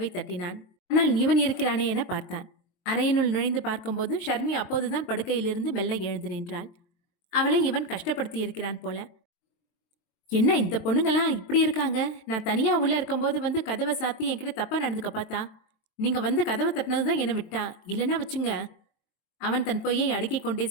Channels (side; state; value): right; late; 22 ms